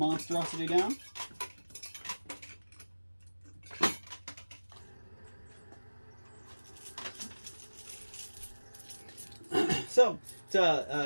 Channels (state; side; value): inverted; both; correlation -1.00